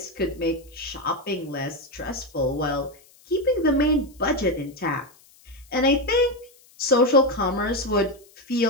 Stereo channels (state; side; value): noise; left; hiss, 28 dB below the sound